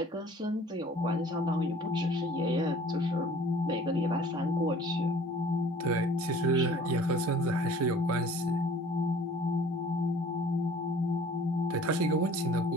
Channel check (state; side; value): normal; both; correlation 0.51